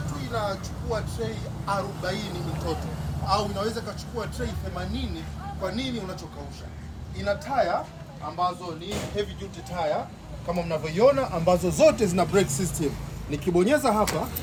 inachukua tray 40 mtoto au inaweza kachukua tray 80 kwa nini unachokausha. Ina tire ambazo ni heavy duty tire kama mnavyoiona, ambazo zote zina brake system. Nikibonyeza hapa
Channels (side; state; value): both; identical; correlation 1.00